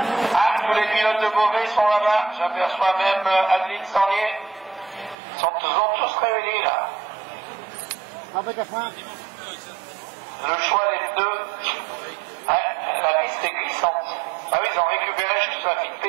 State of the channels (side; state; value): left; drops out; at 5.2 s